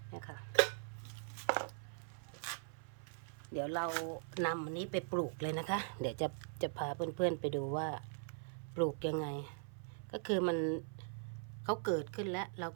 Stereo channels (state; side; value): silent; left; 50 dB below the other